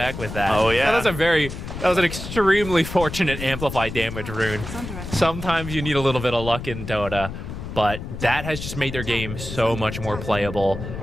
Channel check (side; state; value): left; noise; rumble, 8 dB below the sound